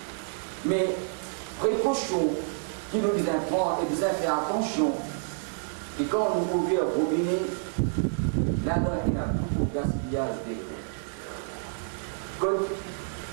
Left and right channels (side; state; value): left; silent; digital silence